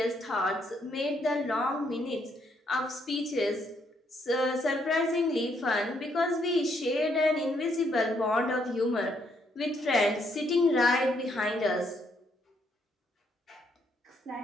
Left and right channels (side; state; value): both; normal; correlation 0.73